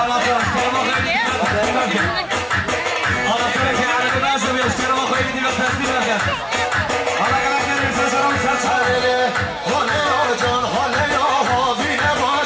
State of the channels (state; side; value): identical; both; correlation 1.00